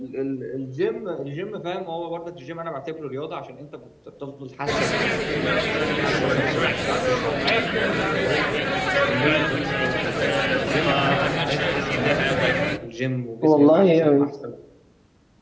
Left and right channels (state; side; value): identical; both; correlation 1.00